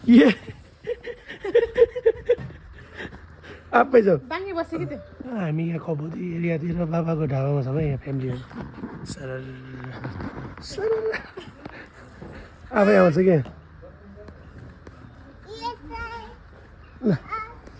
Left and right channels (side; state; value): both; identical; correlation 1.00